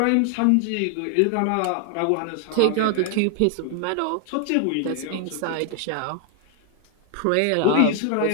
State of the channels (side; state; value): both; different; correlation 0.00